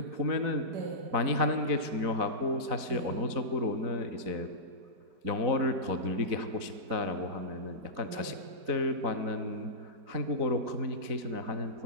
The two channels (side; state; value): left; late; 4.1 ms